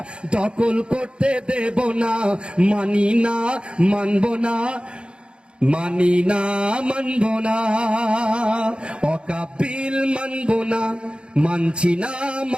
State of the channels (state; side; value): late; left; 0.055 ms